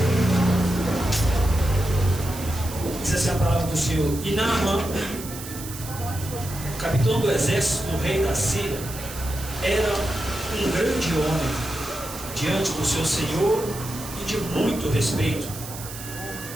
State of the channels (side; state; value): right; noise; hiss, 12 dB below the sound